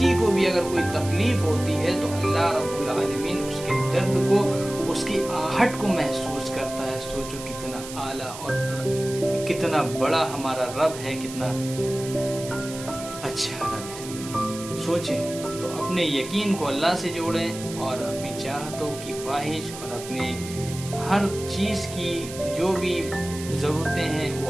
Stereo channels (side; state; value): right; noise; hiss, 12 dB below the sound